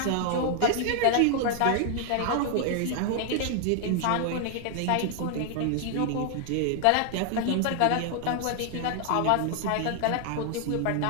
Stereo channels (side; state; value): both; different; correlation 0.00